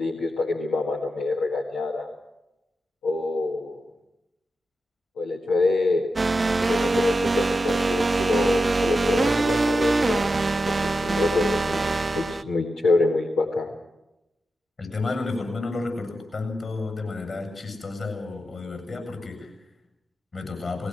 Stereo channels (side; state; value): both; normal; correlation 0.89